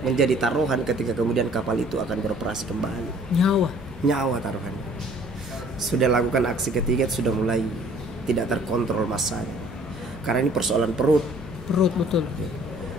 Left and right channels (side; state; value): both; normal; correlation 0.55